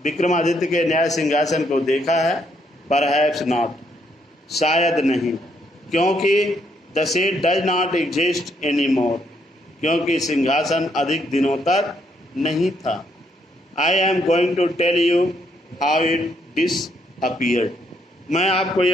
विक्रमादित्य के न्याय सिंहासन को देखा है? Perhaps not, शायद नहीं, क्योंकि the seat does not exist anymore, क्योंकि सिंहासन अधिक दिनों तक नहीं था। I am going to tell you how it disappeared, मैं आपको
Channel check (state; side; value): normal; both; correlation 0.73